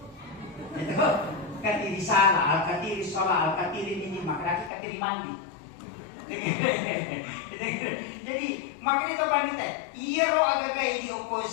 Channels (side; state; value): right; drops out; at 4.7 s